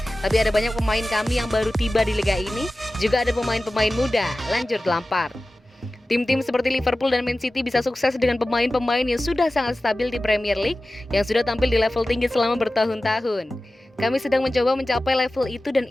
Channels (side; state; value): both; normal; correlation 0.96